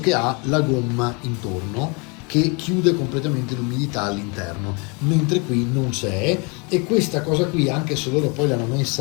ha la gomma intorno, che chiude completamente l'umidità all'interno, mentre qui non c'è. E questa cosa qui, anche se loro poi l'hanno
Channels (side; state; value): right; quieter; 31.6 dB